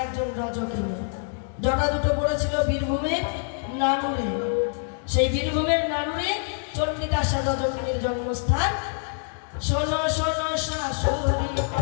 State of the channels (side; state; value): right; silent; 61 dB below the other